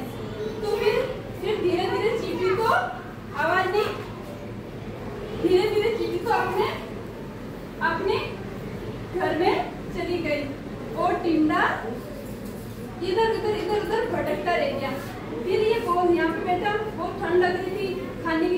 तो फिर धीरे धीरे चिट्टी को आवाज नहीं, धीरे धीरे चिट्टी को अपने घर में चली गई और टिंडा इधर उधर भटकता रह गया। फिर ये बहुत यहाँ पे बैठा, बहुत ठंड लग रही थी, खाने के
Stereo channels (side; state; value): both; identical; correlation 1.00